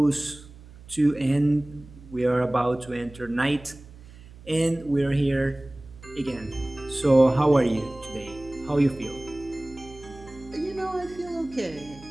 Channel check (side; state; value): right; noise; hum, 20 dB below the sound